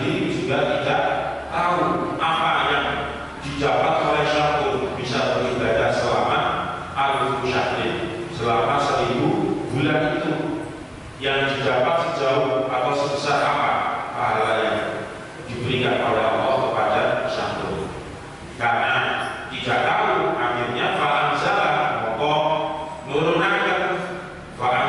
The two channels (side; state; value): both; identical; correlation 1.00